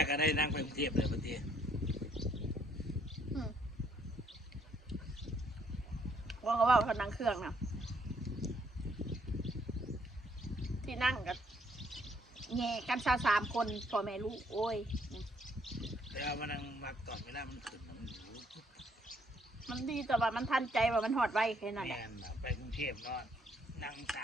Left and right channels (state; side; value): normal; both; correlation 0.68